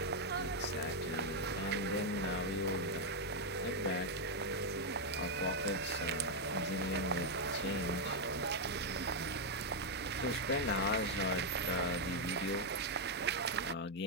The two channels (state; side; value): normal; both; correlation 0.01